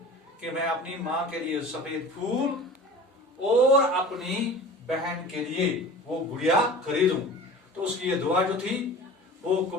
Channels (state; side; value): normal; both; correlation 0.39